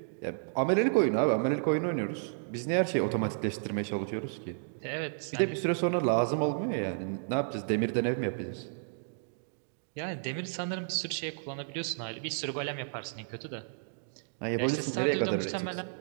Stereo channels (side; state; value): left; silent; digital silence